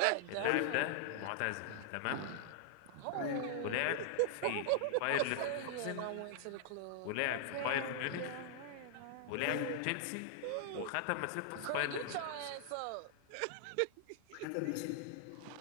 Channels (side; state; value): both; different; correlation -0.01